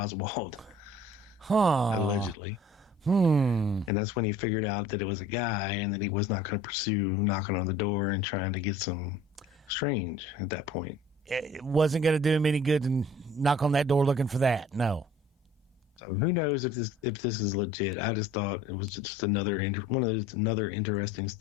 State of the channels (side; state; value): both; normal; correlation 0.49